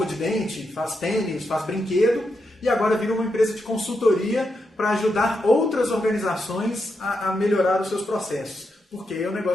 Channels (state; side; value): normal; both; correlation 0.84